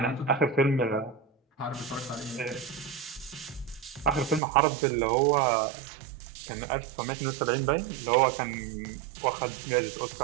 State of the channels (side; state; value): left; drops out; at 4.4 s